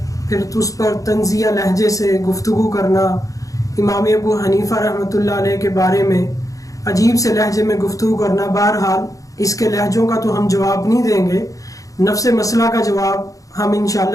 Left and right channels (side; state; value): right; late; 0.16 ms